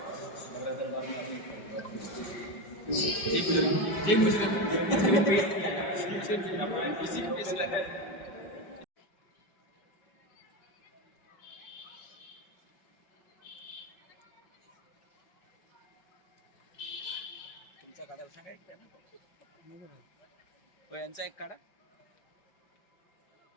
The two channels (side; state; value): right; late; 5.1 ms